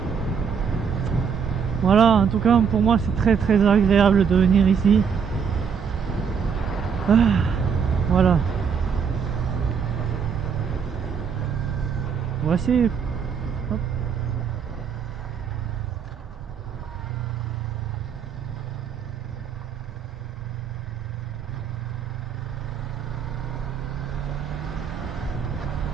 Voilà, en tout cas pour moi c'est très très agréable de venir ici. Ah, voilà. Voici. Hop.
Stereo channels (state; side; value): quieter; left; 6.7 dB